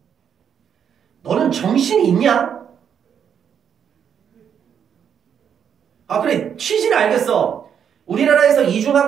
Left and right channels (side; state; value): left; quieter; 8.1 dB